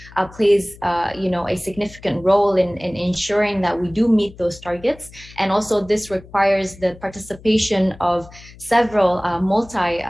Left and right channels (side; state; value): left; noise; hum, 21 dB below the sound